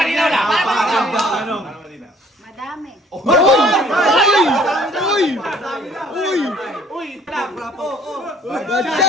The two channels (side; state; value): both; normal; correlation 0.58